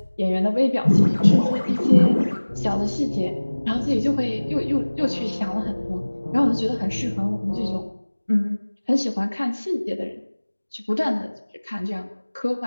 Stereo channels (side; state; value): both; inverted; correlation -1.00